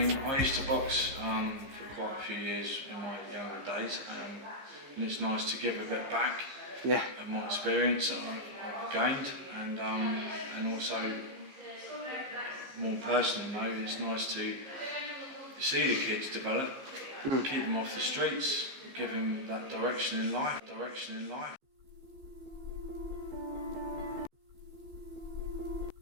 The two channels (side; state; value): left; late; 15 ms